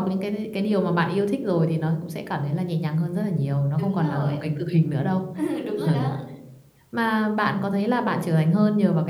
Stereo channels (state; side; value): identical; both; correlation 1.00